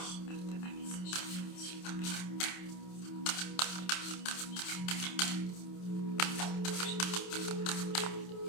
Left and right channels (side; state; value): right; late; 27 ms